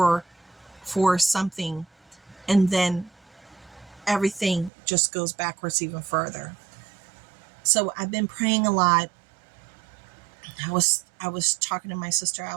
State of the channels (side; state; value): left; drops out; at 4.7 s